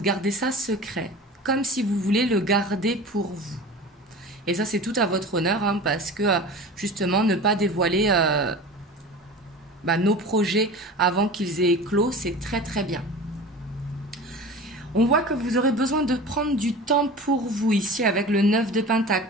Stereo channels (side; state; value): both; normal; correlation 0.35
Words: ça secret, comme si vous voulez le garder pour vous. Et ça, c'est tout à votre honneur, hein, parce que justement, ne pas dévoiler nos projets avant qu'ils aient éclos, c'est très très bien. On voit que vous aurez besoin de prendre du temps pour vous ici avec le 9 de pentacle,